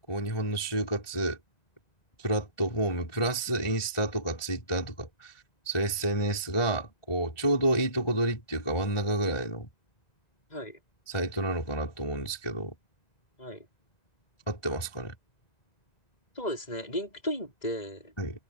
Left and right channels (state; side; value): late; right; 1.9 ms